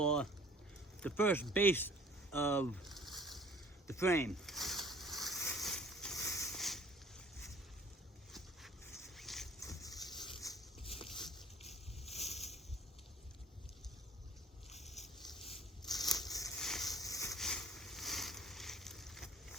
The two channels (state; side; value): normal; both; correlation 0.54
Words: the first base of the frame.